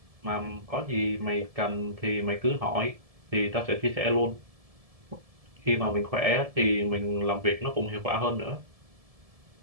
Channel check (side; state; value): left; late; 1.7 ms